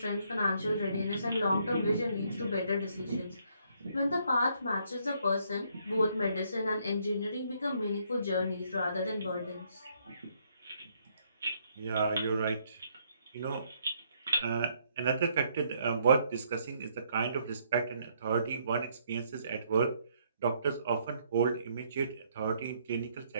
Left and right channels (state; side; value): inverted; both; correlation -0.70